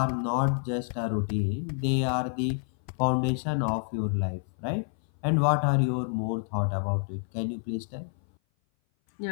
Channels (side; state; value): right; silent; 57 dB below the other